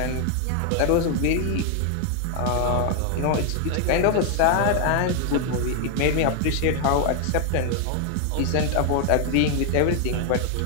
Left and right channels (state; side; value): different; both; correlation 0.01